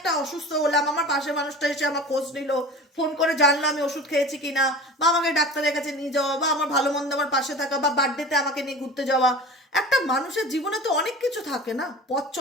অসুস্থ হলাম, আমার পাশের মানুষটা এসে আমার খোঁজ নিল, ফোন করে জানলো আমি ওষুধ খেয়েছি কিনা, বা আমাকে ডাক্তারের কাছে নিয়ে যাওয়া, বা আমার ভালো মন্দ আমার পাশে থাকা, বা বার্থডেতে আমাকে নিয়ে ঘুরতে যাওয়া। একটা মানুষের জীবনে তো অনেক কিছু থাকে না, পথ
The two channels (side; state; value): both; normal; correlation 0.36